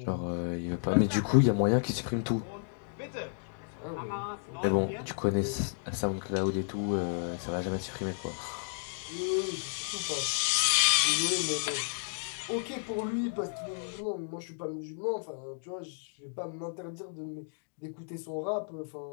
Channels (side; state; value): right; silent; digital silence